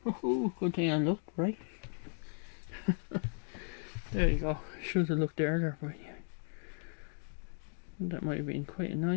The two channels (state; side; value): silent; right; 54 dB below the other